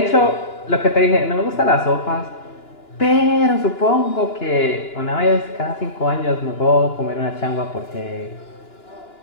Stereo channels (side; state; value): right; late; 2.9 ms